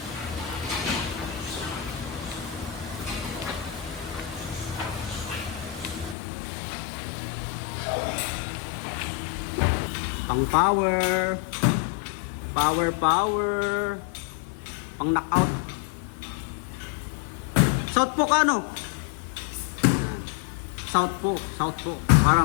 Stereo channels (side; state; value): right; drops out; at 6.2 s